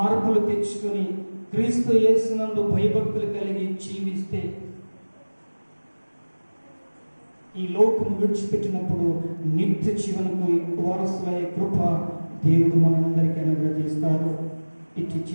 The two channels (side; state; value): both; inverted; correlation -1.00